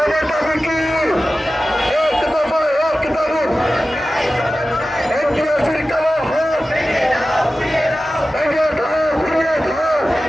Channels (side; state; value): both; normal; correlation 0.95